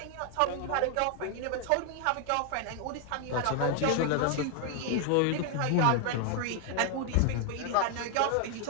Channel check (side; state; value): both; different; correlation 0.00